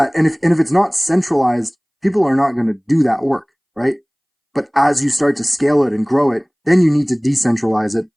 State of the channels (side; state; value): both; identical; correlation 1.00